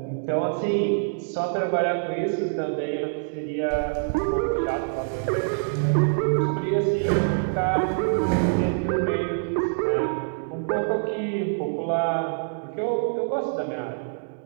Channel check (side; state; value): left; silent; digital silence